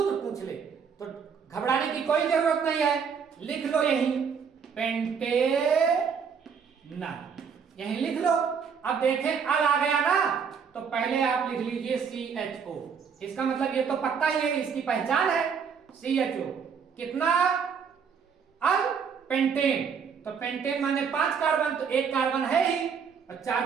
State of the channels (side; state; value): left; quieter; 6.5 dB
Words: पूछ ले, तो घबराने की कोई जरूरत नहीं है। लिख लो यही पेंटेनल, यही लिख लो। अब देखें अल आ गया ना, तो पहले आप लिख लीजिए CHO। इसका मतलब ये तो पक्का ही है, इसकी पहचान है CHO। कितना अल? पेंटेन। तो पेंटेन माने 5 कार्बन, तो 1 कार्बन है ही और 4